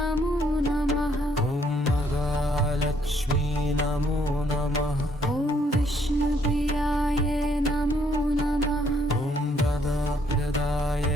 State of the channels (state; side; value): normal; both; correlation 0.68